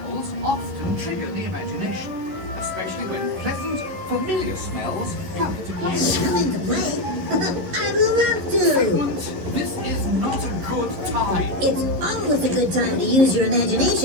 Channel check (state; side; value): late; left; 11 ms